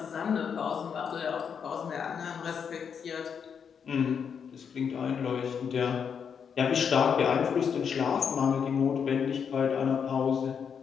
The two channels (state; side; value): quieter; right; 7.0 dB